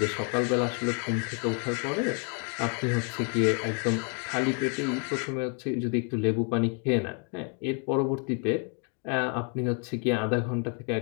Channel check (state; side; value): quieter; right; 39.2 dB